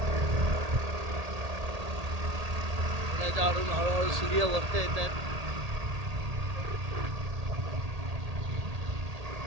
पुण्याच्या हळूहळू सूर्य वरती येत आहेत.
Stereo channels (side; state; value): left; late; 1.8 ms